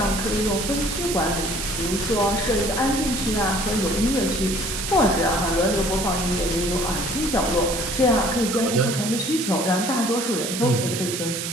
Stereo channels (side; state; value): right; noise; hiss, 4 dB below the sound